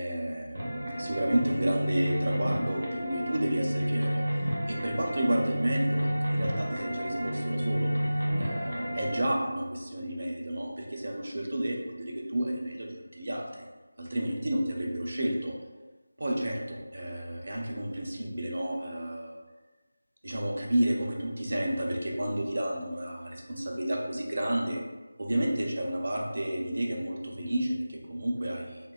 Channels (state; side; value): inverted; both; correlation -0.96